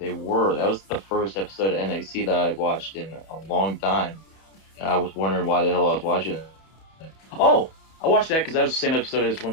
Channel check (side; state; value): right; late; 31 ms